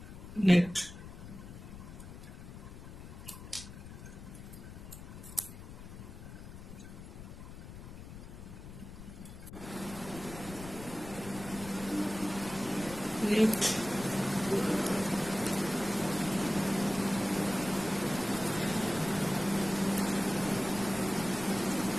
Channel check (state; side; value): noise; left; rumble, 12 dB below the sound